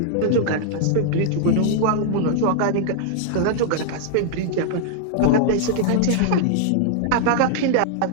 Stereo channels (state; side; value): different; both; correlation -0.01